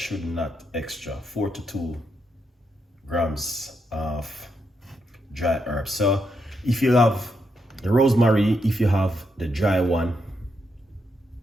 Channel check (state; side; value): normal; both; correlation 0.81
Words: not extra 4 to 2 grams of dry herbs. So if you have the rosemary, if you have the dry one,